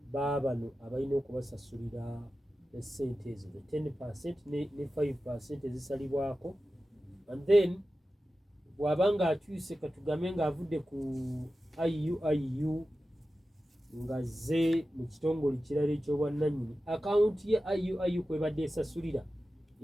baabano abalina okubasasulira esente ezo 10% ne 5% ezisalibwako, and then bw'abanga akyuse katugambe ng'avudde ku IU nga zze mu kitongole kirala eky'obwannannyini akawunti ye IU kwebadde esasulira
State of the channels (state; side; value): normal; both; correlation 0.93